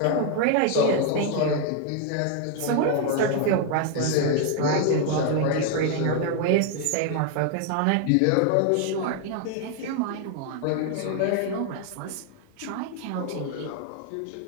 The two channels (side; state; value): both; different; correlation 0.00